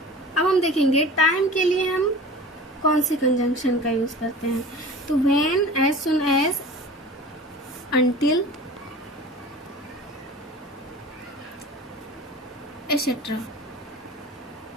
अब हम देखेंगे टाइम के लिए हम कौन से कंजंक्शन का यूज करते हैं। तो when, as soon as, until, etcetera.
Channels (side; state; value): both; normal; correlation 0.38